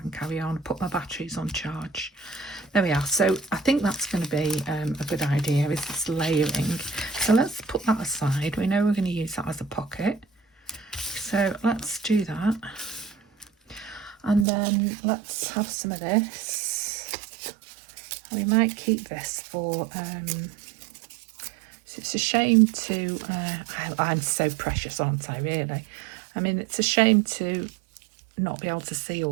and carry on, put my batteries on charge. There we are. So I think that's going to be a good idea, is this layering. So let's put that aside. We know we're going to use that as a pocket. So let's do that. And then let's have some of this. We might keep this for, so it's a shame to, I'm so precious, aren't I, really? I mean, it's a shame to not be able to see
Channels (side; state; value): left; drops out; at 14.5 s